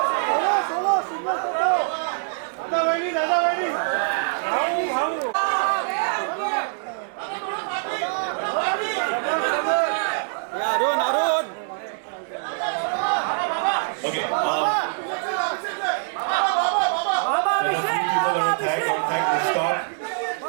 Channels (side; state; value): left; silent; 63 dB below the other